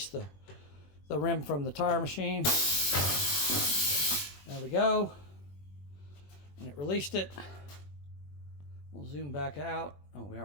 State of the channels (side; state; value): right; late; 21 ms